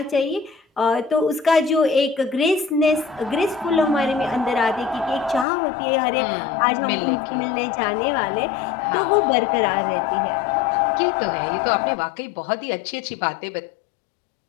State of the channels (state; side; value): drops out; right; at 5.5 s